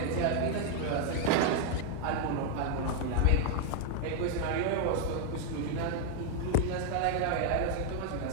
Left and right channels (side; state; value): both; different; correlation 0.00